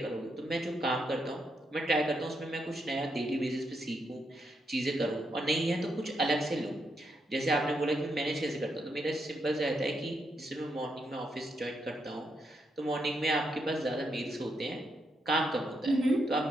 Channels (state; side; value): normal; both; correlation 0.80